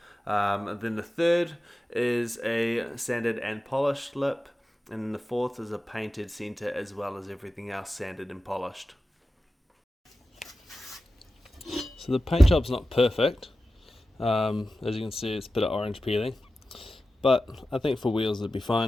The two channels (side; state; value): both; normal; correlation 0.93